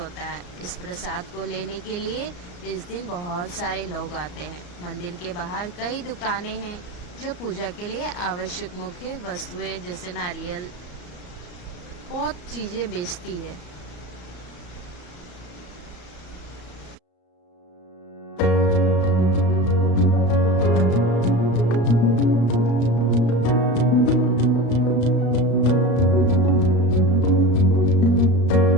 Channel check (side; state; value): right; late; 34 ms